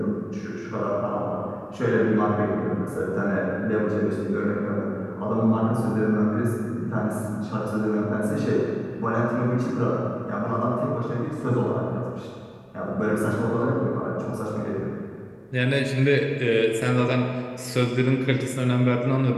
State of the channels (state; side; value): identical; both; correlation 1.00